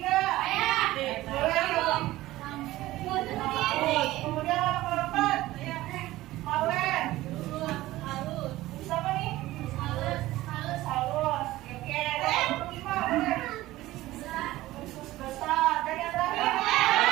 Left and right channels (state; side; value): quieter; left; 16.8 dB